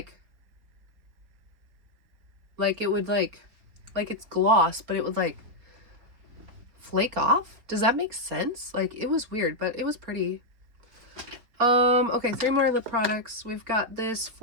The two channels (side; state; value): left; late; 4.2 ms